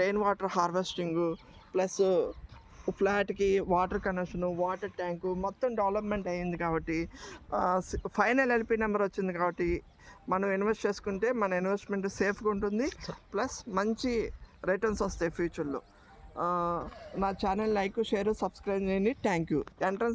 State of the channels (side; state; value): both; identical; correlation 1.00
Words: water harvesting, plus ఫ్లాట్కి వాటర్ కనెక్షను, వాటర్ ట్యాంకు మొత్తం డెవలప్మెంట్ అయ్యింది. కాబట్టి ఫైనల్ ఎల్పి నెంబర్ వచ్చింది. కాబట్టి మనం ఇన్వెస్ట్ చేసుకుంటే మన ఇన్వెస్ట్మెంట్ సేఫ్గా ఉంటుంది, ప్లస్ మంచి రిటర్న్స్ వస్తాయి ఫ్యూచర్లో. నా ఛానల్ లైక్, షేర్, సబ్స్క్రైబ్ చేయండి. Thank you.